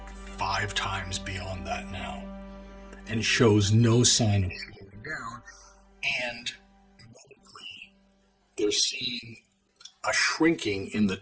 5 times beyond that now, and shows no sign of slowing down. And medically, they're seeing a shrinking in the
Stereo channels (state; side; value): identical; both; correlation 1.00